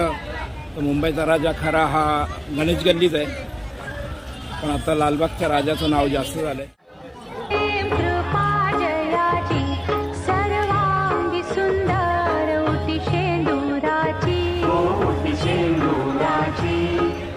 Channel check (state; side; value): identical; both; correlation 1.00